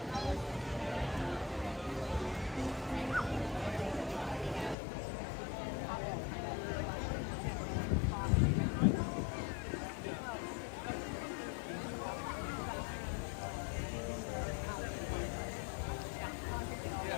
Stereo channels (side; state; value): right; drops out; at 4.8 s